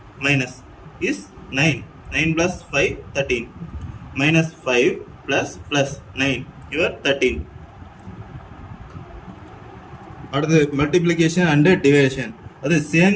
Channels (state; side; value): identical; both; correlation 1.00